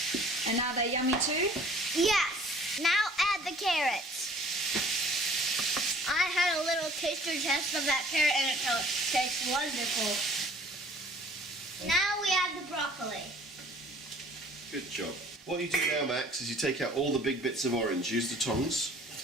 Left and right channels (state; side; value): normal; both; correlation 0.52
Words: And are they yummy too? Yes. Now add the carrots. I had a little taster test of that carrot and it tastes wonderful. Now we add the broccoli. Good job. What you do now, Max, is you take out all the big bits of orange. Use the tongs,